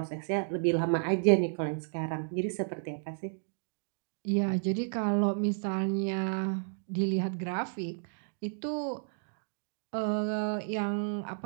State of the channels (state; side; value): silent; left; digital silence